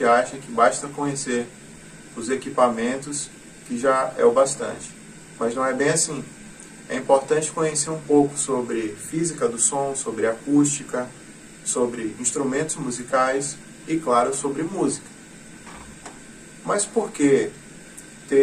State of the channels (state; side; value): identical; both; correlation 1.00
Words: acha que basta conhecer os equipamentos que já é o bastante, mas não é bem assim. É importante conhecer um pouco sobre física do som, sobre acústica, sobre instrumentos musicais e, claro, sobre música. Mas por que